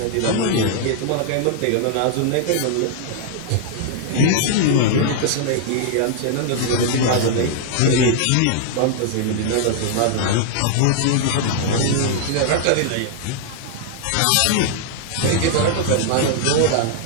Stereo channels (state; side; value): different; both; correlation -0.01